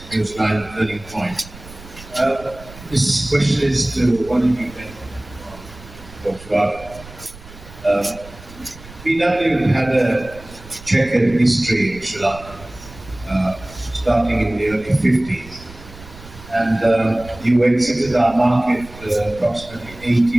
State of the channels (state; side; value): noise; right; rumble, 18 dB below the sound